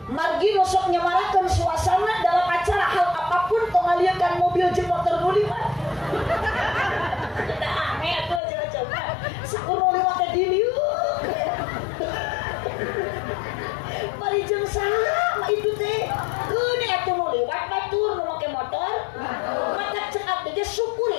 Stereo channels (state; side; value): drops out; right; at 8.4 s